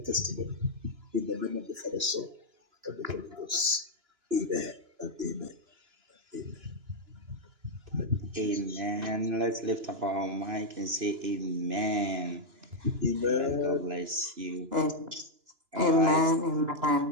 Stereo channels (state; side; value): late; left; 2.9 ms